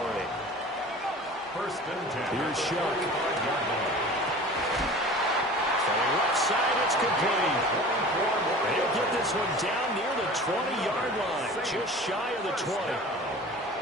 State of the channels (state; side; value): normal; both; correlation 0.40